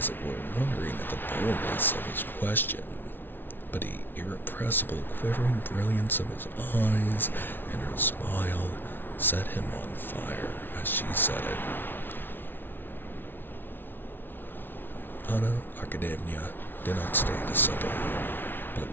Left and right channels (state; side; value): late; right; 0.10 ms